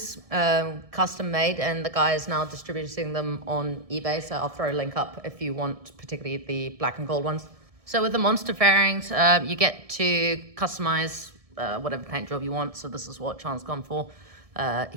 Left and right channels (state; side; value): late; left; 1.6 ms